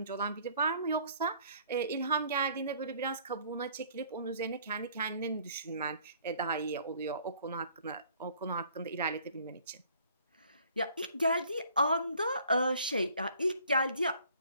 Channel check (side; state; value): both; inverted; correlation -0.57